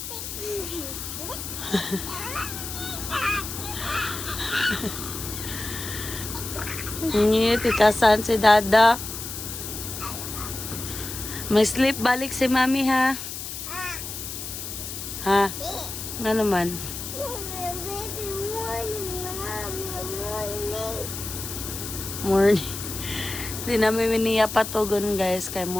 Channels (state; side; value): noise; left; hiss, 7 dB below the sound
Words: Iya, tikasan si Dada. May sleep balik si Mami, ha? Ha? Nga naman. Morning. Di namin miniya patugon, guys. Kay